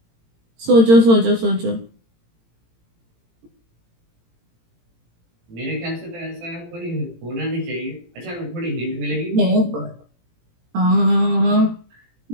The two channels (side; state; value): left; late; 18 ms